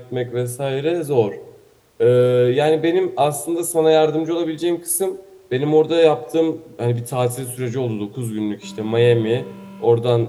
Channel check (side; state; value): both; identical; correlation 1.00